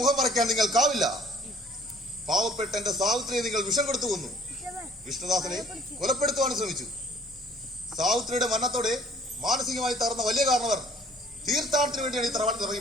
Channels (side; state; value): both; normal; correlation 0.54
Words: മറയ്ക്കാൻ നിങ്ങൾക്കാവില്ല. പാവപ്പെട്ട എന്റെ സാവിത്രിയെ നിങ്ങൾ വിഷം കൊടുത്തു കൊന്നു. വിഷ്ണുദാസനെ കൊലപ്പെടുത്തുവാൻ ശ്രമിച്ചു. സാവിത്രിയുടെ മരണത്തോടെ മാനസികമായി തകർന്ന വലിയ കാരണവർ തീർത്ഥാടനത്തിന് വേണ്ടിയാണ് ഈ തറവാട്ടിൽ